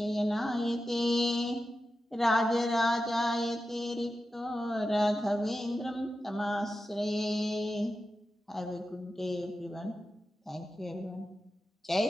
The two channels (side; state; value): both; normal; correlation 0.92